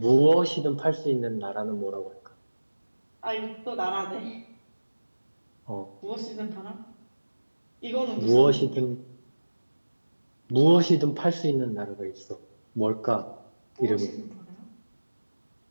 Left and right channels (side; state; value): both; inverted; correlation -1.00